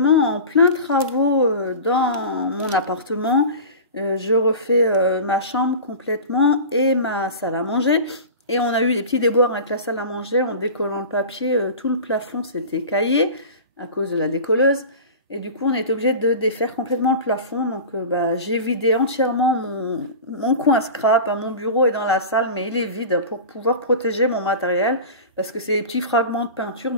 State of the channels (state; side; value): inverted; both; correlation -0.32